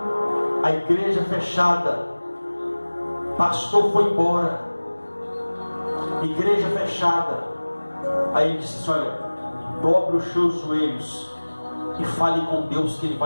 a igreja fechada, pastor foi embora, igreja fechada, aí ele disse assim: olha, dobre os seus joelhos e fale com Deus que Ele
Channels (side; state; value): both; inverted; correlation -1.00